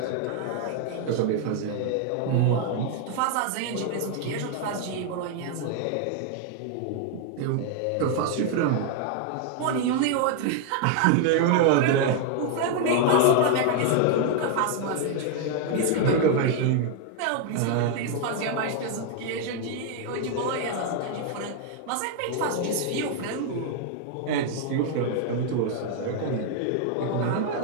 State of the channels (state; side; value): different; both; correlation 0.00